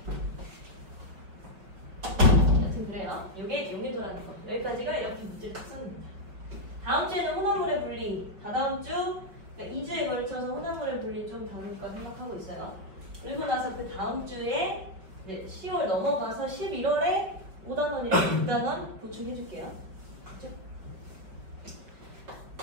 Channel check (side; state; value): left; late; 5.1 ms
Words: 여튼 그래요. 이게 용해도라는 거. 여기까지가 이렇게 문제 특성입니다. 다음 주에는 혼합물의 분리. 다다음 주, 그러니까 2주에 걸쳐서 혼합물의 분리 좀 다룰까 생각하고 있어요. 그리고 나서 그 다음 주에 10월 넘어가서 11월에 5단원이랑 6단원 보충해줄게요. 그렇죠?